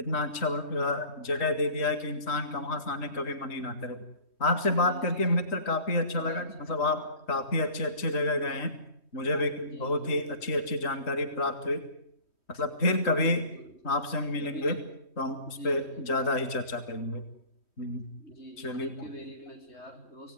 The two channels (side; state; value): right; late; 3.1 ms